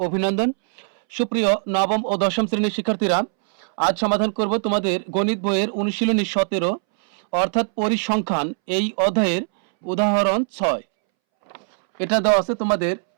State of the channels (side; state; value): left; silent; 64 dB below the other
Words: অভিনন্দন। সুপ্রিয় নবম ও দশম শ্রেণীর শিক্ষার্থীরা, আজ সমাধান করব তোমাদের গণিত বইয়ের অনুশীলনী 17 অর্থাৎ পরিসংখ্যান এই অধ্যায়ের উদাহরণ 6। এটা দেওয়া আছে তোমাদের